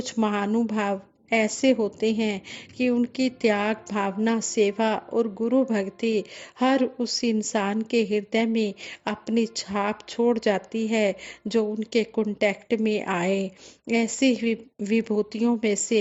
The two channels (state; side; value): identical; both; correlation 1.00